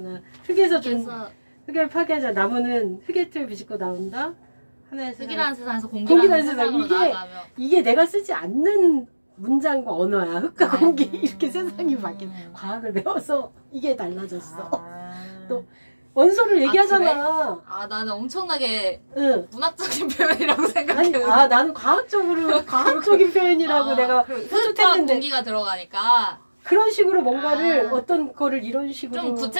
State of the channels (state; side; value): inverted; both; correlation -1.00